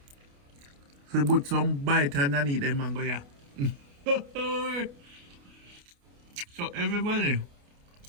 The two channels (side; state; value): left; late; 29 ms